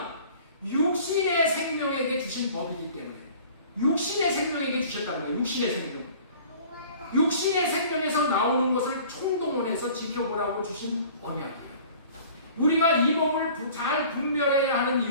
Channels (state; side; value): inverted; both; correlation -0.48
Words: 육신의 생명에게 주신 법이기 때문에 육신의 생명에게 주셨다는 거예요. 육신의 생명에서 나오는 것을 총동원해서 지켜보라고 주신 언약이에요. 우리가 이 법을 잘 분별해야 하는